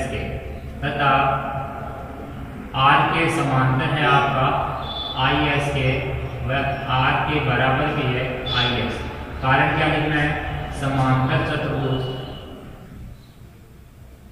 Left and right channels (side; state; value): both; identical; correlation 1.00